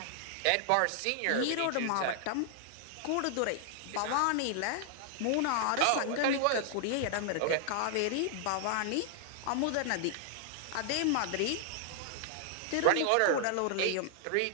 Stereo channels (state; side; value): different; both; correlation -0.01